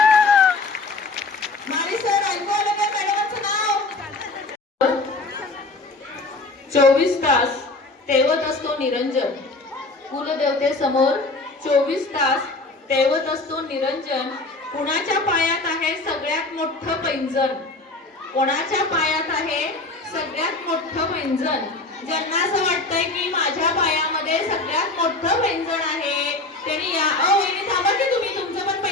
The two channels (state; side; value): quieter; right; 3.2 dB